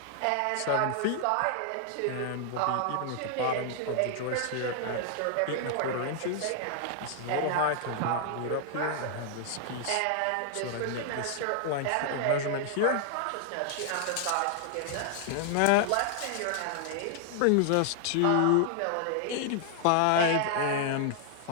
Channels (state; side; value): different; both; correlation 0.00